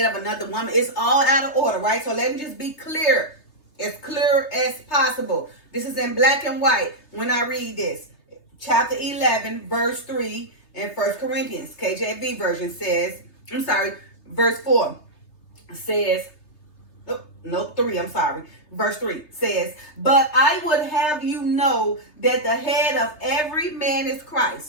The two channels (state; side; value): late; right; 3.3 ms